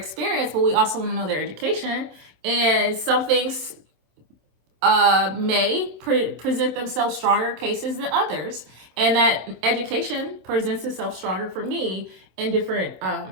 but we also want to know their education. And some things may present themselves stronger cases than others. And that education presents itself stronger for me in different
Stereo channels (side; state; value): left; late; 26 ms